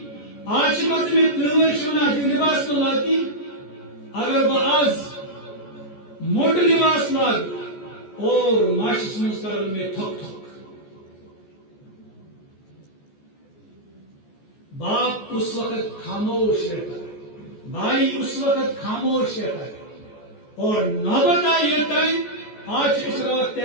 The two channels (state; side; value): late; right; 14 ms